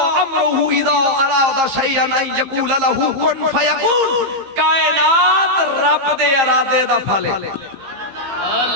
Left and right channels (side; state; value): left; late; 15 ms